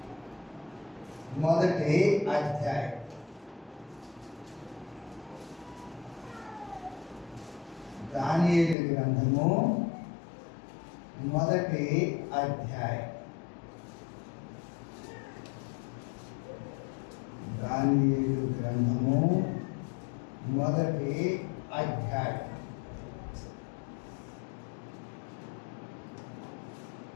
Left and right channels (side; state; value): right; drops out; at 8.8 s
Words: మొదటి అధ్యాయం. దానియేలు గ్రంథము మొదటి అధ్యాయం. దానియేలు గ్రంథము మొదటి అధ్యాయం.